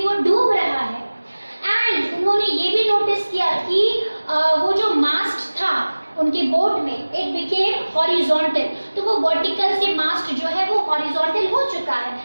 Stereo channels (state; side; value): inverted; both; correlation -1.00